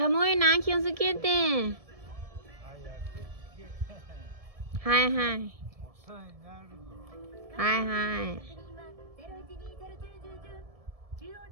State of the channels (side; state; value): left; late; 1.7 ms